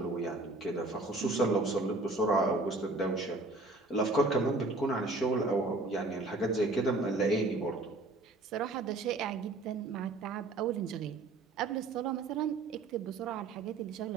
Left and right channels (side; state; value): left; quieter; 3.1 dB